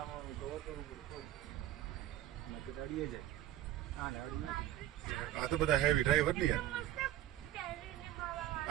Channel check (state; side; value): quieter; left; 13.2 dB